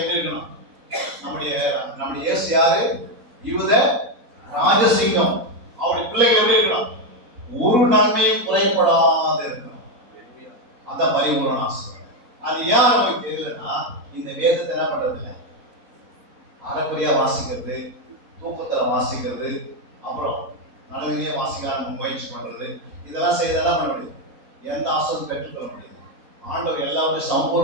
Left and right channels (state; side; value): late; left; 4.1 ms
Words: இருக்கணும்? நம்முடைய இயேசு யாரு? யூத ராஜசிங்கம். அவருடைய பிள்ளைகள் எப்படி இருக்கணும்? ஒரு நன்மையும் குறைப்படாத இருக்கணும். அந்த பரிபூரண ஆசீர்வாதம். அது ஏன் நமக்கு தெரியலன்னா இந்த வேதத்தை என்ன பண்றது இல்லை, அரைக்குறையா வாசிக்கிறது, தூக்கத்துல வாசிக்கிறது, அப்புறம் நல்லதுலயே வாசிக்க முயற்சி பண்றது, இதெல்லாம் செய்தெல்லாம் பண்ண முடியும். எந்த ஆசீர்வாதம் பெற்றுக்கொள்ள முடியாது. ஆண்டவர் எல்லாத்தையும்